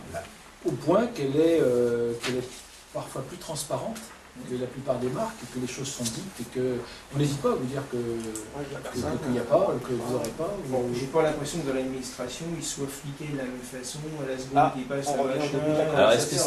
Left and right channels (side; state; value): both; identical; correlation 1.00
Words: Au point qu'elle est parfois plus transparente que la plupart des marques, que les choses sont dites et qu'on n'hésite pas à vous dire qu'il n'y a pas, que vous n'aurez pas. Bon, j'ai pas l'impression que dans l'administration, ils soient fliqués de la même façon à la seconde qu'ils passent on à revient machin. au début de la Alors est-ce que